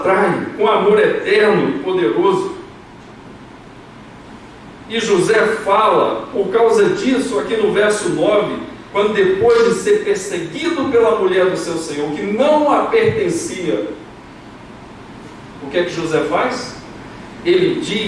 com amor eterno e poderoso. E José fala, por causa disso, aqui no verso 9, quando depois de ser perseguido pela mulher do seu Senhor, que não a pertencia, o que é que José faz? Ele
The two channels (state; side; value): identical; both; correlation 1.00